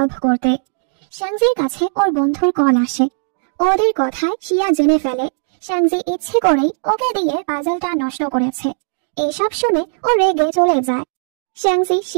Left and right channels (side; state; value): left; silent; digital silence